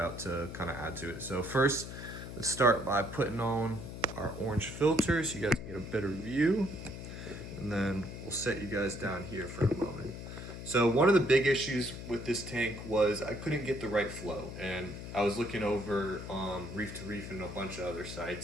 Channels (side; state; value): left; noise; hum, 9 dB below the sound